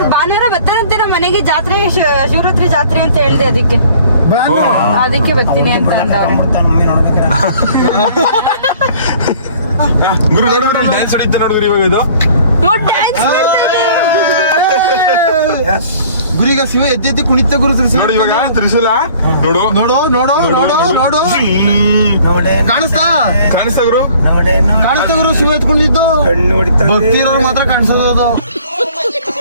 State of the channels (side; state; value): both; inverted; correlation -0.53